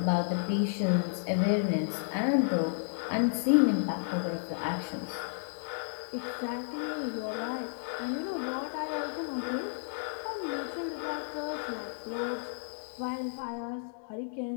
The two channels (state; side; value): silent; right; 56 dB below the other